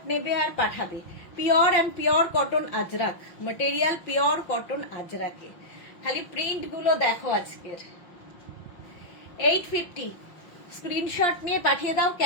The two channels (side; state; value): right; late; 6.0 ms